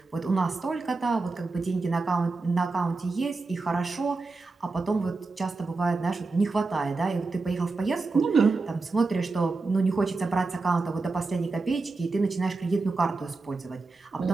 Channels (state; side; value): quieter; left; 3.8 dB